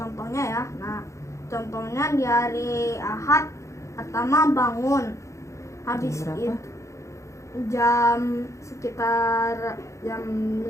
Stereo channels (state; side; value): late; right; 0.15 ms